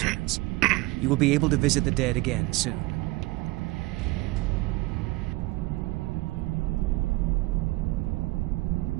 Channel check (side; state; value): left; quieter; 21.3 dB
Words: You will be able to visit the dead again soon.